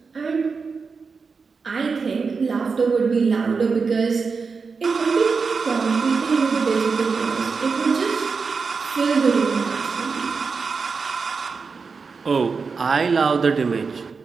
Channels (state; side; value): quieter; left; 5.0 dB